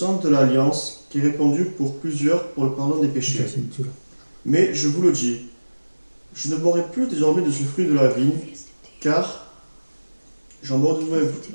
de l'alliance, qui est répandu pour plusieurs pour le pardon des péchés. Mais je vous le dis, je ne boirai plus désormais de ce fruit de la vigne, car j'en bois de nouveau avec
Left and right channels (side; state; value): both; inverted; correlation -1.00